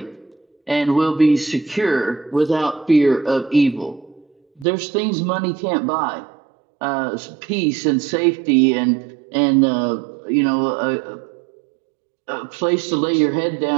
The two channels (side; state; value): left; drops out; at 4.7 s